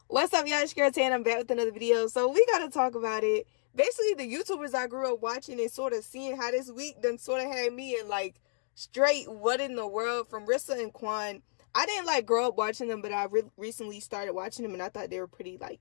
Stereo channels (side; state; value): right; silent; digital silence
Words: What's up, y'all? It's Girlz and I'm back with another video. So we gotta talk about it. Basically, the YouTubers I grew up watching and sort of seeing how this week done sort of had me in like straight what in the world from Rissa and Quan. I didn't like grow up watching them, but I recently started watching them and I thought they were pretty like